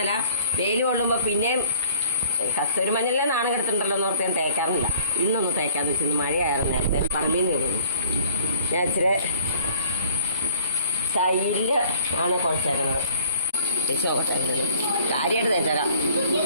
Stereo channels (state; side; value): inverted; both; correlation -0.55